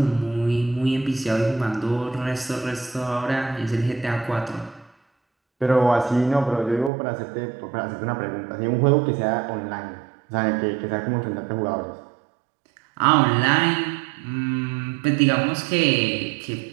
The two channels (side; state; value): left; drops out; at 6.9 s